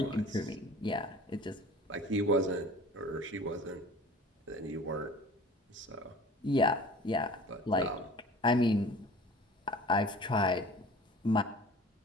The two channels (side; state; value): both; normal; correlation 0.43